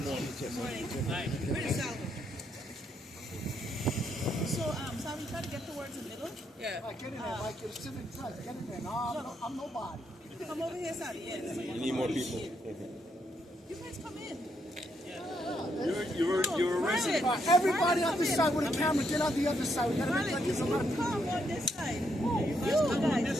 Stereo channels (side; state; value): both; normal; correlation 0.76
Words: Morning. Where's Salvo? So, Salvo, you try to get towards the middle? Yeah. Get in there, Mike. Get a civic dress. Get in there. No, I'm nobody. Come over here, Salvo. Yes. We need more people. You guys come in. You're Marlon, Everybody on come this in. side with a camera, get on the other side. We gotta make Marlon, like you there's a lot of people. come on this side. You guys.